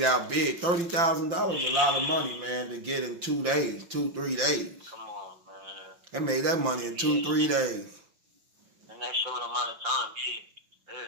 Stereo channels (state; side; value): late; left; 5.8 ms